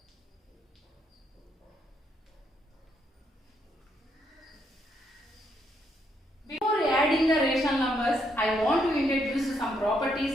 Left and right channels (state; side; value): normal; both; correlation 0.75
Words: Before adding the rational numbers, I want to introduce some properties